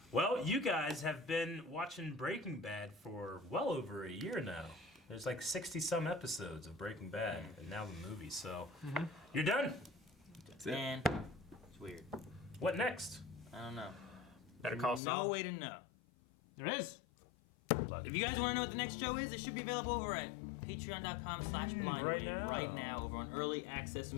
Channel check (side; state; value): right; drops out; at 15.0 s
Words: Well, you guys have been watching Breaking Bad for well over a year now. There's like 60-some episodes of Breaking Bad, and now the movie. So you're done. That's it. Man, it's weird. What next? I don't know. Better call No Saul. way to know. There is. If you guys want to know what the next show is, it should be available over at patreon.com/blind right now. over on early access. So